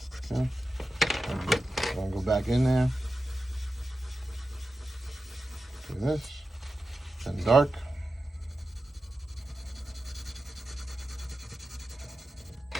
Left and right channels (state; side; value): normal; both; correlation 0.92